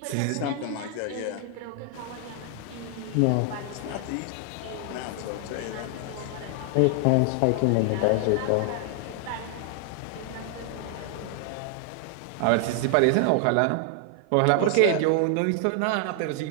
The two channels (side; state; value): both; different; correlation 0.00